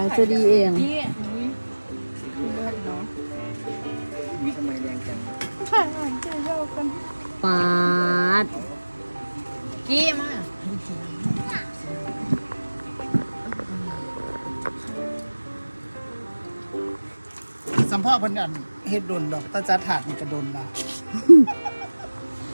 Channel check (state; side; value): inverted; both; correlation -1.00